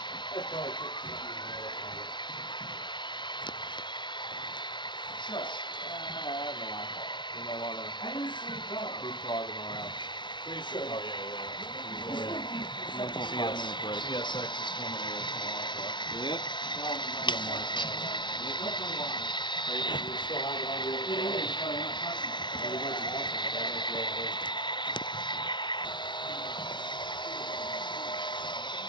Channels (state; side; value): late; right; 0.23 ms